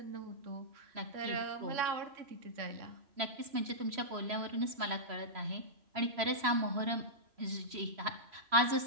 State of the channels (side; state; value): left; late; 3.0 ms